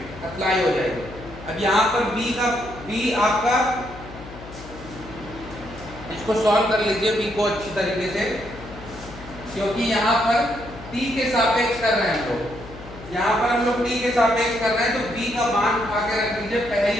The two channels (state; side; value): noise; left; hum, 15 dB below the sound